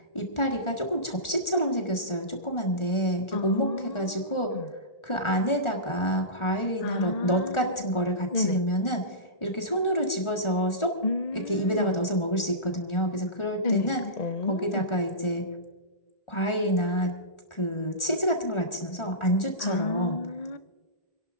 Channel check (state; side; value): late; right; 1.4 ms